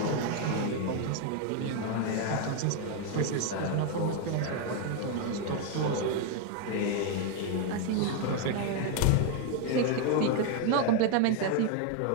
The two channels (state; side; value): different; both; correlation 0.01